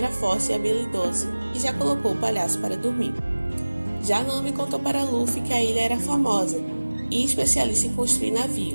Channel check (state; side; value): inverted; both; correlation -1.00